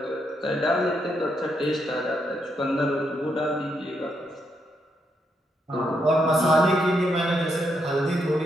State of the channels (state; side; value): normal; both; correlation 0.79